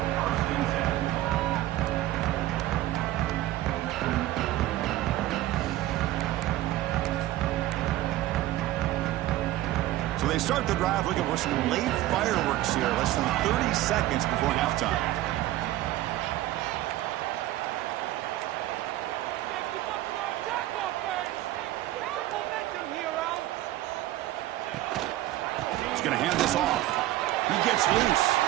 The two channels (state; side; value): quieter; left; 15.3 dB